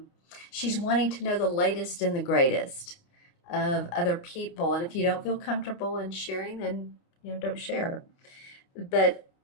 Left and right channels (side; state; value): right; late; 29 ms